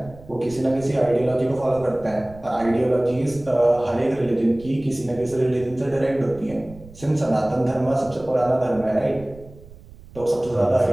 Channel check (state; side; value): noise; right; rumble, 20 dB below the sound